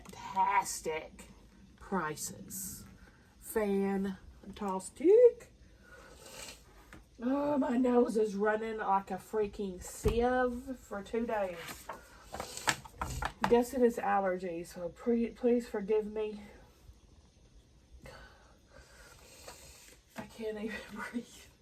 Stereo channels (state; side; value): identical; both; correlation 1.00